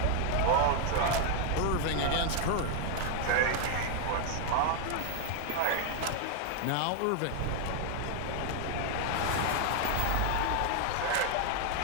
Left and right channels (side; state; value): both; different; correlation 0.00